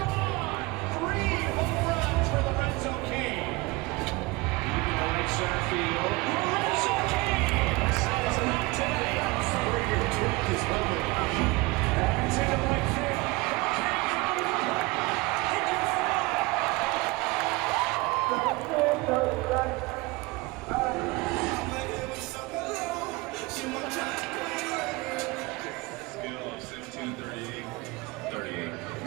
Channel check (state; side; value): quieter; left; 23.6 dB